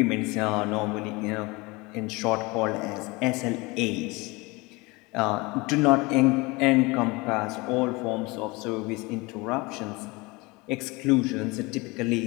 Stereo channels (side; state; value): right; quieter; 24.7 dB